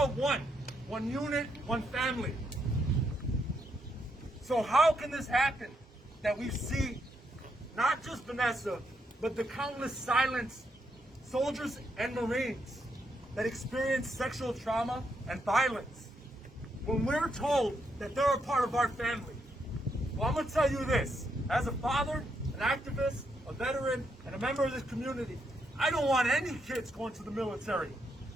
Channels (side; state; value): both; normal; correlation 0.78